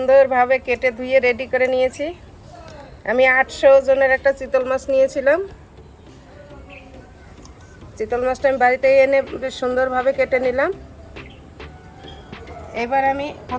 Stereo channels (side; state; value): both; identical; correlation 1.00